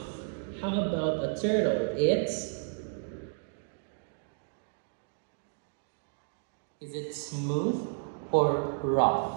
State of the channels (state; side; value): silent; left; digital silence